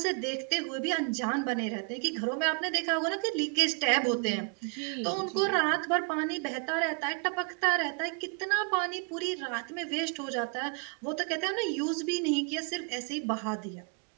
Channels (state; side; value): quieter; left; 36.1 dB